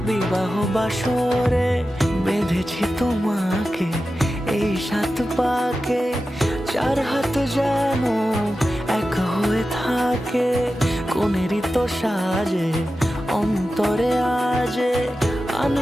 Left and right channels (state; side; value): normal; both; correlation 0.93